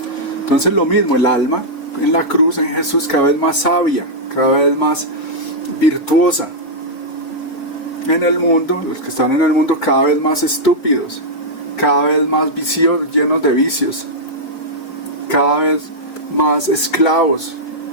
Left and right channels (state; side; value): late; right; 4.5 ms